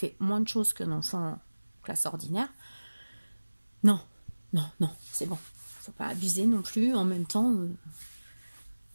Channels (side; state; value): both; inverted; correlation -1.00